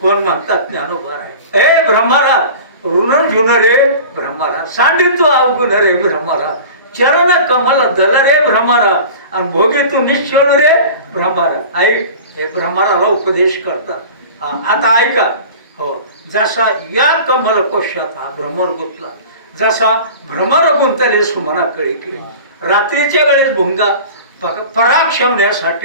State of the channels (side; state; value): both; inverted; correlation -0.38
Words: कोण म्हणतात? ज्ञानोबा आहे. ए ब्रह्मरा, ऋण झुन रे ब्रह्मरा, सांडितो अवगुण रे ब्रह्मरा, चरण कमल दल रे भ्रमरा, आणि भोगे तू निश्चळ रे भ्रमरा. ऐक, हे भ्रमराला उपदेश करतात. आता ऐका. हो, जसा या कमल कोशात हा भ्रमर गुंतला, जसा भ्रमर गुंतले सुमना कळी, रात्रीच्या वेळेस भुंगा पराग